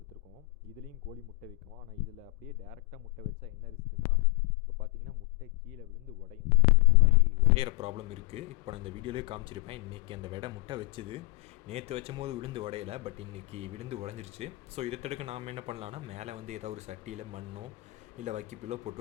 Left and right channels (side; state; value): right; quieter; 24.3 dB